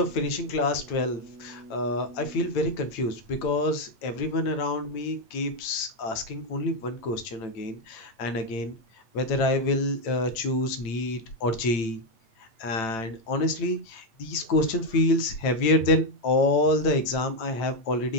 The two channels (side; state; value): right; late; 8.9 ms